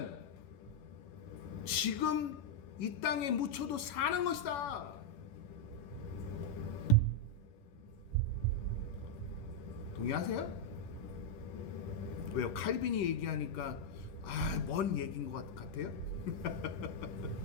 지금 이 땅에 묻혀도 사는 것이다. 동의하세요? 왜요? 칼빈이 얘기하니까 먼 얘기인 것 같아요?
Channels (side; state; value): right; late; 11 ms